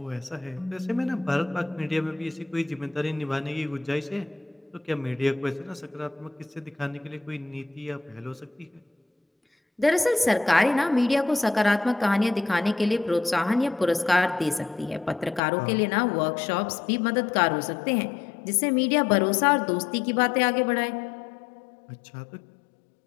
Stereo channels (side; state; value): right; drops out; at 15.4 s